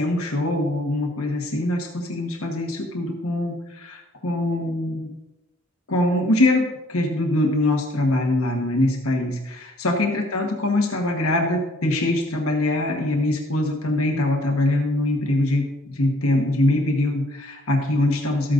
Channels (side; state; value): both; normal; correlation 0.62